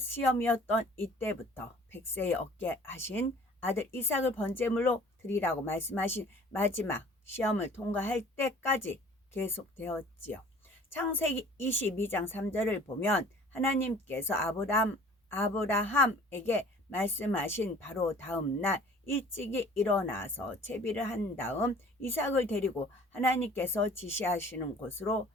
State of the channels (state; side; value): normal; both; correlation 0.49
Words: 이때부터 100세에 얻게 하신 아들 이삭을 번제물로 드리라고 말씀하신 마지막 시험을 통과할 때까지 계속되었지요. 창세기 22장 3절을 보면 하나님께서 아브라함에게 말씀하신 바로 다음 날 일찍이 일어나서 채비를 한 다음 이삭을 데리고 하나님께서 지시하시는 곳으로